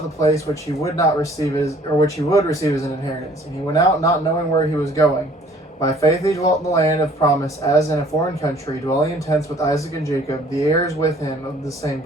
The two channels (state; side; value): normal; both; correlation 0.56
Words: the place which he would not receive which he would receive as an inheritance, and he went out not knowing where he was going. By faith he dwelt in the land of promise, as in a foreign country, dwelling in tents with Isaac and Jacob, the heirs with him of the same